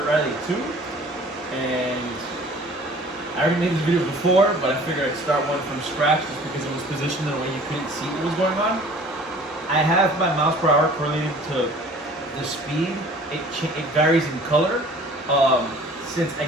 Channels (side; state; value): both; normal; correlation 0.49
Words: Rally 2, and I already made this video before, but I figured I'd start one from scratch just because it was positioned in a way you couldn't see what was going on. I have my miles per hour correlated to the speed. It varies in color. Since I